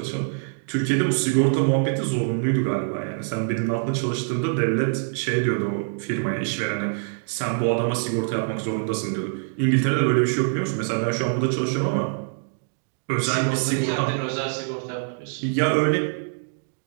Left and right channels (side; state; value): left; silent; digital silence